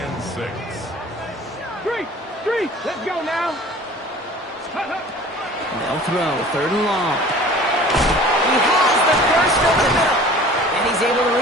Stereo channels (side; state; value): both; normal; correlation 0.45